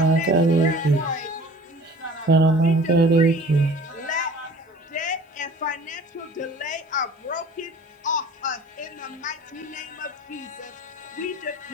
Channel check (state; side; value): normal; both; correlation 0.46